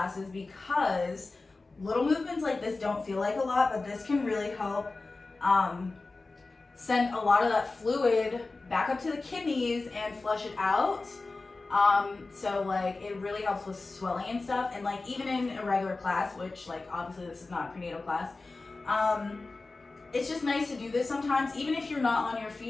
because little movements like this don't feel like a lot, but this can really help send a lot of that fluid back up to the kidneys and flush it out. So like it really helps with swelling and stuff, and like even in a regular class, which like obviously this is not a prenatal class, it's just nice to do this sometimes, even if you're not on your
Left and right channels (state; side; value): quieter; right; 3.5 dB